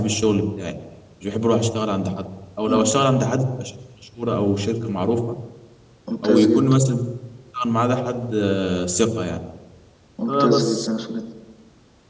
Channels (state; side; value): identical; both; correlation 1.00